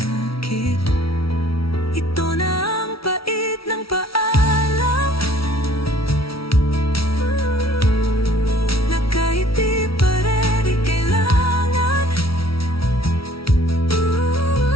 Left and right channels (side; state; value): right; late; 0.75 ms